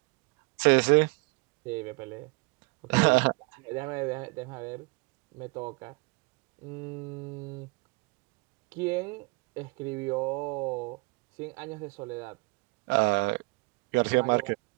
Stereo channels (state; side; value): quieter; left; 28.7 dB